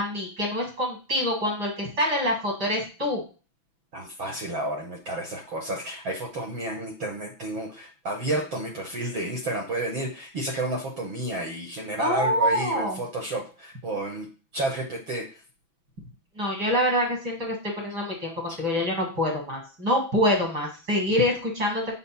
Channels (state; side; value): late; left; 6.0 ms